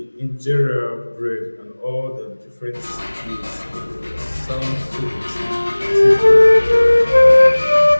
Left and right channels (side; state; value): both; inverted; correlation -1.00